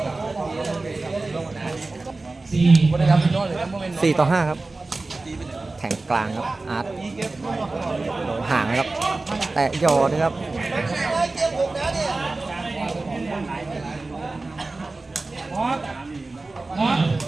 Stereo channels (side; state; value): left; quieter; 3.3 dB